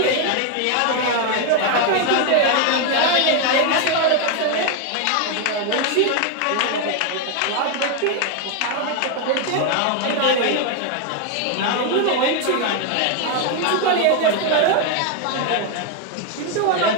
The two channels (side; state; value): both; different; correlation 0.01